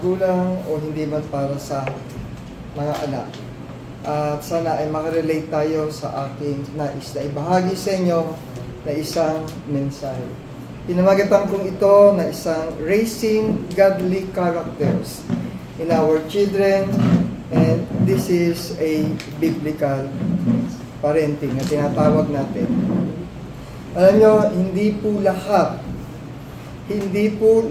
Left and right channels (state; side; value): identical; both; correlation 1.00